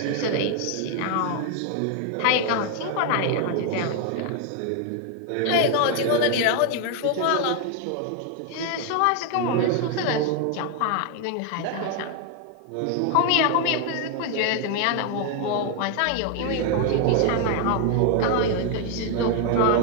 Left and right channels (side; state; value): both; different; correlation 0.01